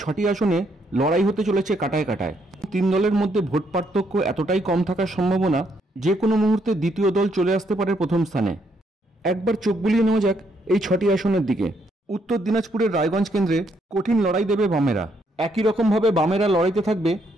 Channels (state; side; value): normal; both; correlation 0.73